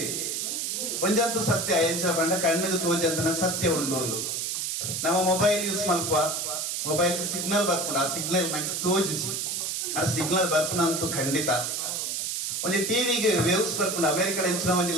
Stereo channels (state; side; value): noise; right; hiss, 2 dB below the sound